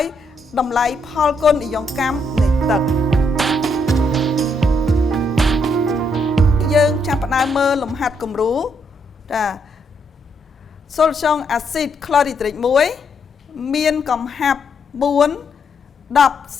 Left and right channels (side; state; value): both; normal; correlation 0.75